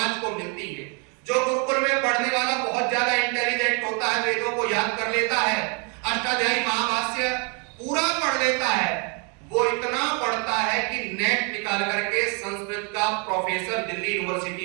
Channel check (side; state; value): left; quieter; 35.5 dB